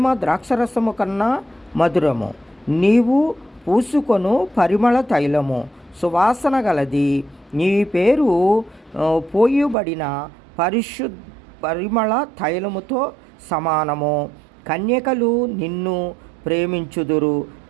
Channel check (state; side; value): drops out; left; at 9.8 s